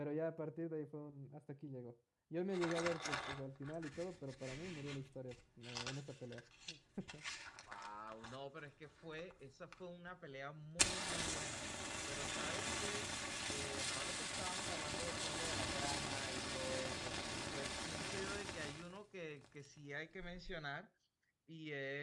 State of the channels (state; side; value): identical; both; correlation 1.00